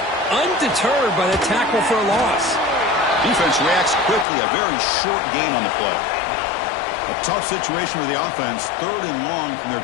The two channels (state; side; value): drops out; right; at 4.2 s